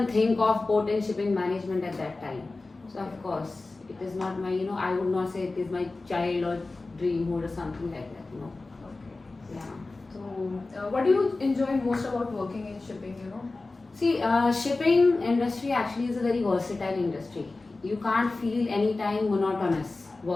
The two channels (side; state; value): right; quieter; 3.4 dB